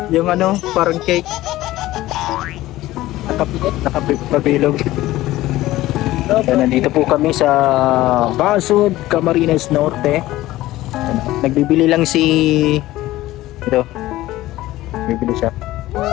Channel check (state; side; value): quieter; right; 16.4 dB